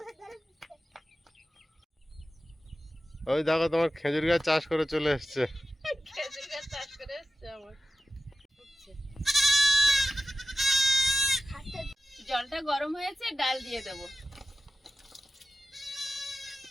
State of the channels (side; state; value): both; normal; correlation 0.92